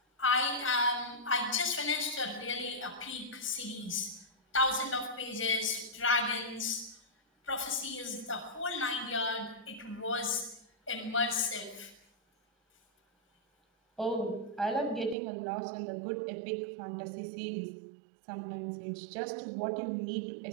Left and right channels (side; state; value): left; drops out; at 15.2 s